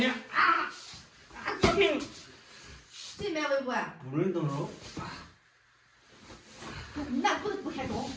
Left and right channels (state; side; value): identical; both; correlation 1.00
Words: 啊！高兴。谁买微博啊？不准动手。那不开动，